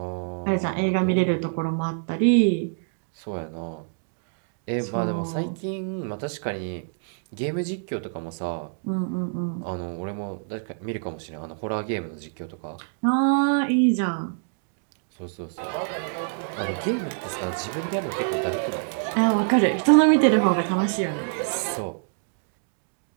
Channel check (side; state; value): left; silent; digital silence